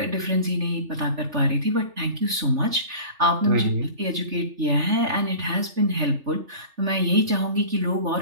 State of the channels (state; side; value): late; left; 3.4 ms